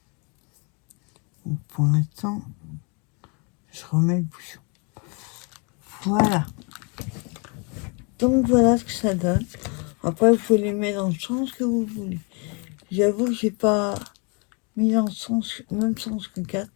Donc pour l'instant, je remets le bouchon. Voilà. Donc voilà ce que ça donne. Après, vous pouvez les mettre dans le sens que vous voulez. J'avoue que j'ai pas mis dans le sens, même sens que 4.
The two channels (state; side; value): quieter; right; 34.0 dB